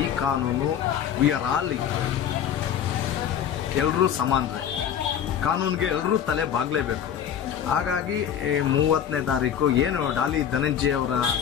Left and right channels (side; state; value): right; quieter; 9.1 dB